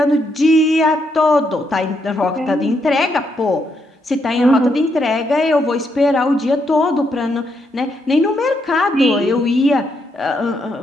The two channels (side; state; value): both; normal; correlation 0.78